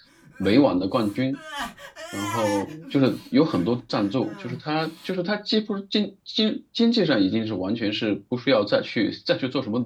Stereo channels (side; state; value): both; identical; correlation 1.00